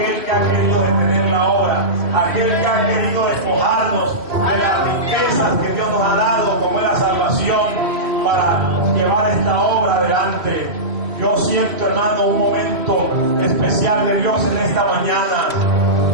que ha querido detener la obra, aquel que ha querido despojarnos de las riquezas que Dios nos ha dado, como es la salvación, para llevar esta obra adelante. Yo siento, hermano, un momento especial de Dios en esta mañana.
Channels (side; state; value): left; late; 3.1 ms